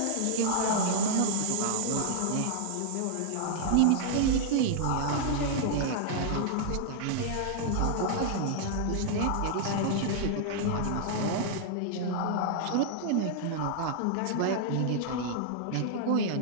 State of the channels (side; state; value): both; different; correlation -0.01